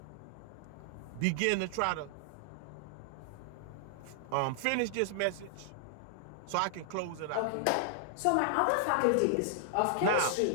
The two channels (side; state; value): both; different; correlation -0.01